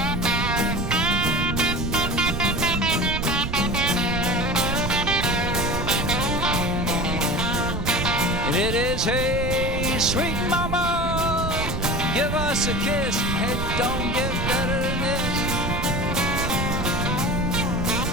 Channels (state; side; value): noise; right; rumble, 2 dB below the sound